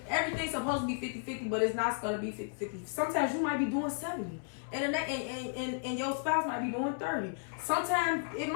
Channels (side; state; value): right; silent; 55 dB below the other